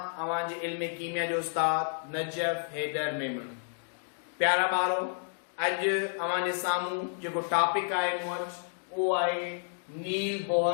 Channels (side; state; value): right; silent; digital silence